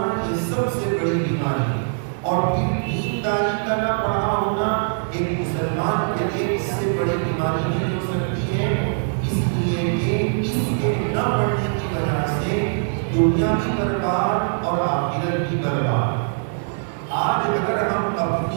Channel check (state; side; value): silent; left; 64 dB below the other